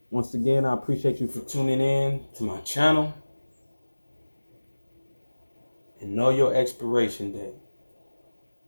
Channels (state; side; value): inverted; both; correlation -1.00